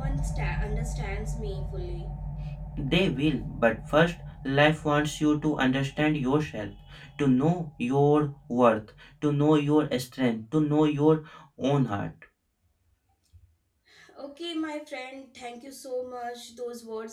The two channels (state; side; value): identical; both; correlation 1.00